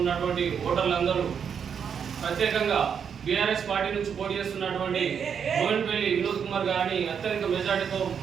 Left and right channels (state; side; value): quieter; left; 7.3 dB